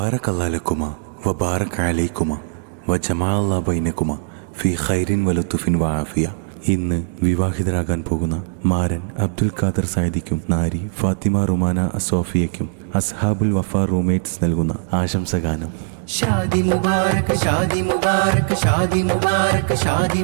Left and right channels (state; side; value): silent; left; digital silence